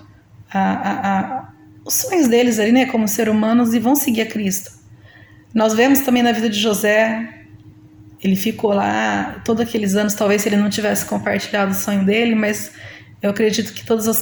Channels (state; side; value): identical; both; correlation 1.00